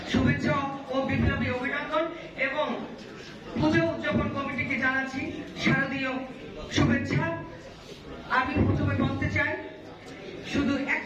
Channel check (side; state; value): both; identical; correlation 1.00